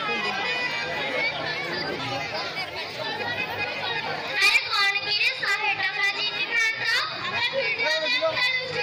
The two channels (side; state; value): both; identical; correlation 1.00